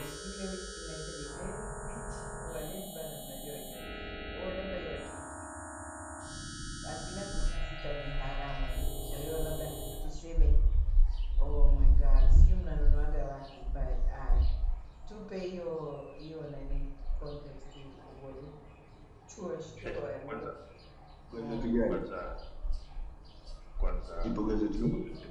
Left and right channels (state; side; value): identical; both; correlation 1.00